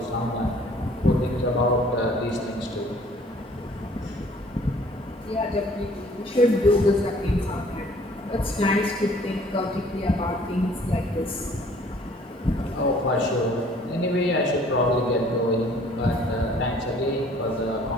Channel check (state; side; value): normal; both; correlation 0.56